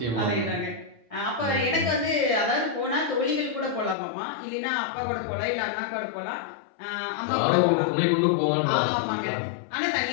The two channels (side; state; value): right; drops out; at 4.0 s